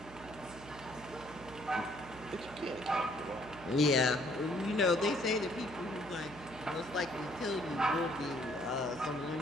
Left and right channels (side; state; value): right; noise; hum, 17 dB below the sound